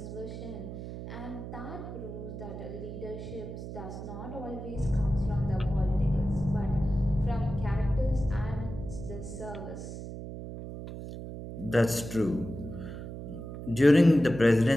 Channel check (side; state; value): right; noise; hum, 9 dB below the sound